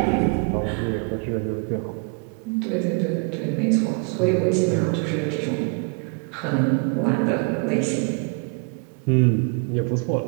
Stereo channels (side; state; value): left; quieter; 36.6 dB